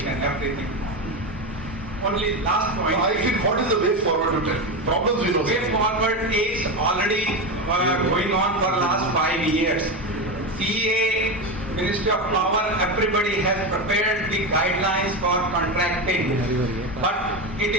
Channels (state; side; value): normal; both; correlation 0.17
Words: and everything. Only last point. I think what is the way forward to tell? Problems we know. Way forward is already going on for last 5 years. CA, Ministry of Power, everybody has prepared the guidelines for contracting, but it